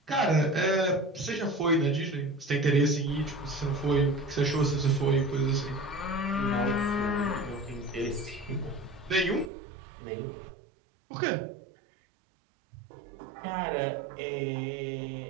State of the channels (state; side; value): drops out; left; at 9.5 s